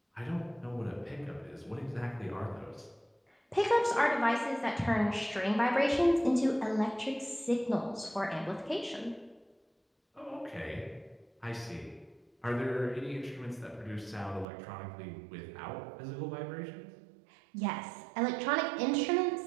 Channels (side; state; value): left; drops out; at 14.5 s